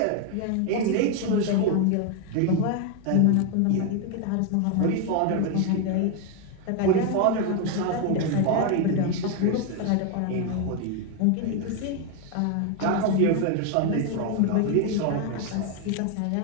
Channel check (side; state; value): both; different; correlation 0.01